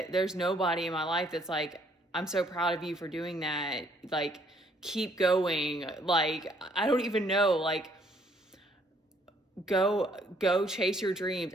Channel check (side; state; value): both; normal; correlation 0.65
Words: nobody in my life that's like, I'm so proud of you for doing that, like, keep going. Like, I don't even know, like, go chase your dreams.